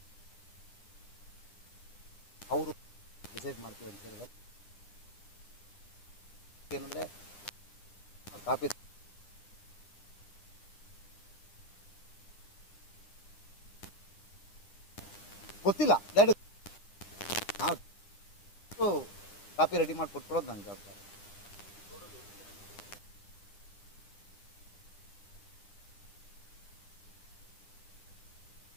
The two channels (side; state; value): right; late; 9.9 ms